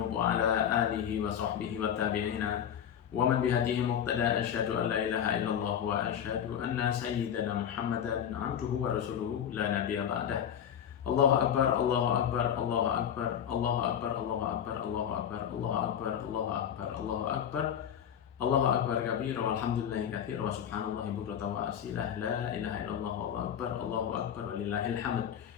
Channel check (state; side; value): quieter; right; 9.0 dB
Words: wa ala alihi wa sahbihi wa tabi'ina wa man bihadihi muqtada. Asyhadu an la ilaha illallah wa asyhadu anna sayyidana Muhammadan abduhu wa rasuluhu la nabiyya ba'dah. Allahu akbar, Allahu akbar, Allahu akbar, Allahu akbar, Allahu akbar, Allahu akbar, Allahu akbar, Allahu akbar, Allahu akbar, Allahu akbar kabira walhamdulillahi katsira wa subhanallahi bukratan wa asilah, la ilaha illallah, Allahu akbar, Allahu akbar walillahil hamd.